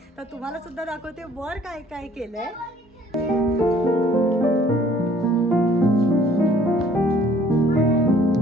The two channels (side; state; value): both; normal; correlation 0.57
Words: तर तुम्हाला सुद्धा दाखवते वर काय काय केलंय.